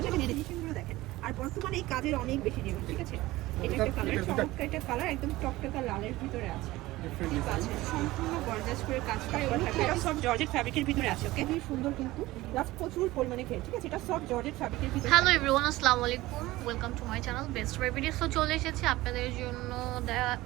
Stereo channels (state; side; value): quieter; left; 18.2 dB